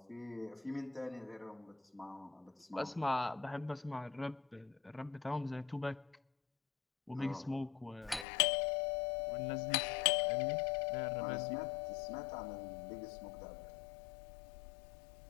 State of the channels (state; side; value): drops out; right; at 8.2 s